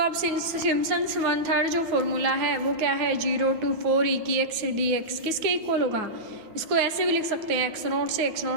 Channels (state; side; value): late; left; 9.3 ms